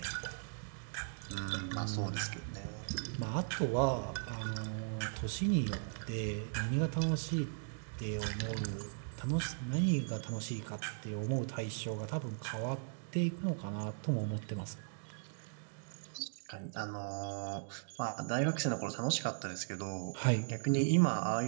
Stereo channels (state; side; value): silent; left; digital silence